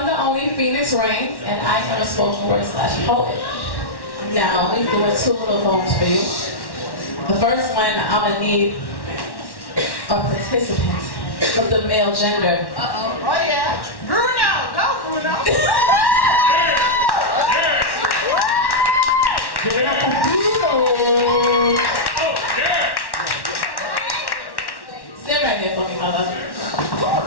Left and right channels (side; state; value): right; late; 1.1 ms